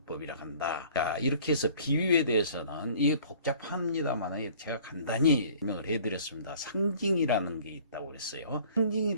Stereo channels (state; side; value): inverted; both; correlation -0.51